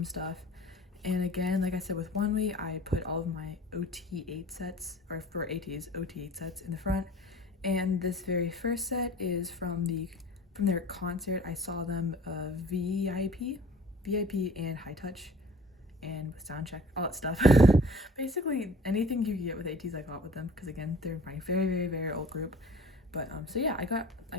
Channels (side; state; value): both; normal; correlation 0.45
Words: stuff. And again, like I said with onewe, I put all of my OT8 sets, or for ateez, OT8 sets in the front. And this very first set is from their concert. I saw them VIP and High Touch and with Soundcheck, all that stuff. Basically anything you can get with ateez I got with them, because again, they're my very, very, very old group. But so yeah, I got